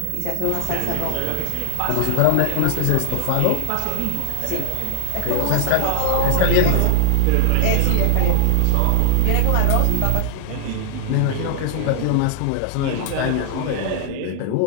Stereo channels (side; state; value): both; different; correlation 0.00